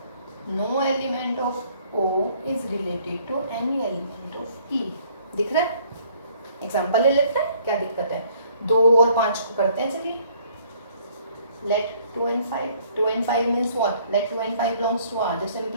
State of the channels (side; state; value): both; inverted; correlation -0.61